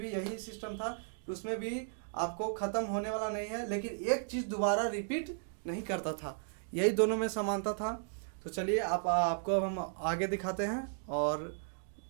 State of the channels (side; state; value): left; silent; digital silence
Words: भी यही सिस्टम था, उसमें भी आपको खत्म होने वाला नहीं है, लेकिन एक चीज दोबारा रिपीट नहीं करता था, यही दोनों में समानता था। तो चलिए आपको हम आगे दिखाते हैं और